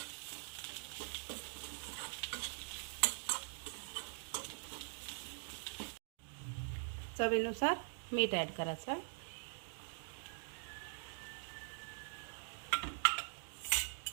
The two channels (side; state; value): left; silent; digital silence